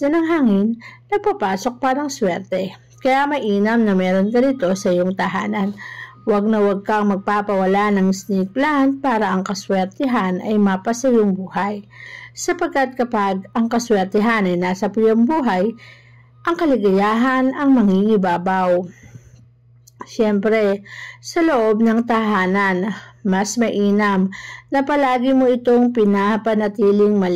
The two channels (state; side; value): identical; both; correlation 1.00